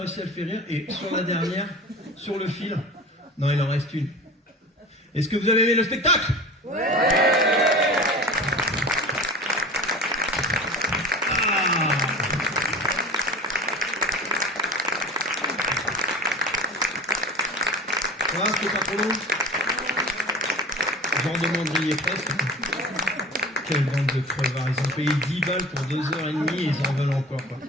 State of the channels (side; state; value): both; normal; correlation 0.36